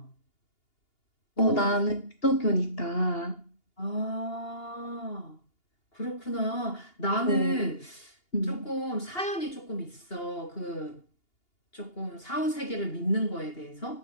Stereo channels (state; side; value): late; right; 2.8 ms